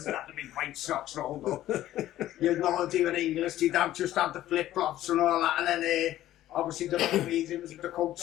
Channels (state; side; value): quieter; right; 13.7 dB